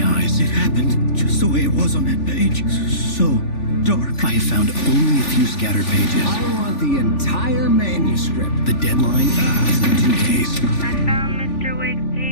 eyes. It happened just the way it was on that page. So dark. I have found only a few scattered pages. I want the entire manuscript. The deadline is in 2 days. I found Mr. Wake's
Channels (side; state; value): right; late; 3.4 ms